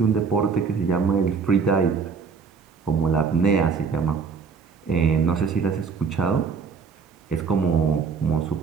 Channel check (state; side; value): quieter; left; 5.4 dB